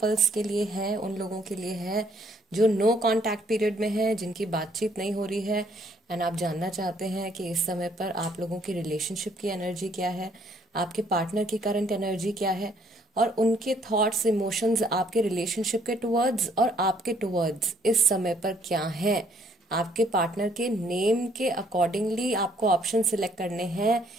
के लिए है, उन लोगों के लिए है जो नो कांटेक्ट पीरियड में है, जिनकी बातचीत नहीं हो रही है एंड आप जानना चाहते हैं कि इस समय पर आप लोगों की रिलेशनशिप की एनर्जी क्या है, आपके पार्टनर की करंट एनर्जी क्या है और उनके थॉट्स इमोशंस आपके रिलेशनशिप के टुवर्ड्स और आपके टुवर्ड्स इस समय पर क्या है। आपके पार्टनर के नेम के अकॉर्डिंगली आपको ऑप्शन सिलेक्ट करने हैं,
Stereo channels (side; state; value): both; normal; correlation 0.65